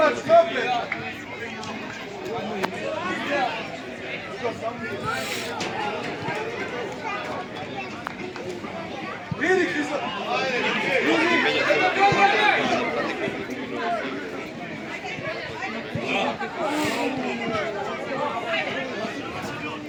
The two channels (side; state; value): both; identical; correlation 1.00